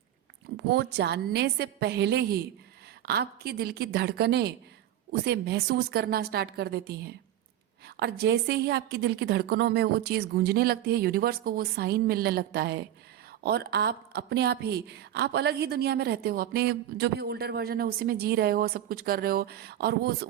वो जानने से पहले ही आपकी दिल की धड़कनें उसे महसूस करना स्टार्ट कर देती हैं। और जैसे ही आपकी दिल की धड़कनों में वो चीज़ गूंजने लगती है, यूनिवर्स को वो साइन मिलने लगता है, और आप अपने आप ही, आप अलग ही दुनिया में रहते हो, अपने जो भी ओल्डर वर्जन है उसी में जी रहे हो, सब कुछ कर रहे हो, और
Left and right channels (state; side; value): quieter; left; 12.0 dB